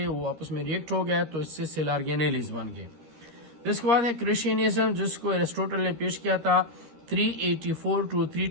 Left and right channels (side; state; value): left; late; 13 ms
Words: وہ آپس میں ریئیکٹ ہو گئے تو اس سے سیل آرگینیلیز بن گئے. اس کے بعد ہے کرسچینزم، جس کو ایرسٹوٹل نے پیش کیا تھا 384 to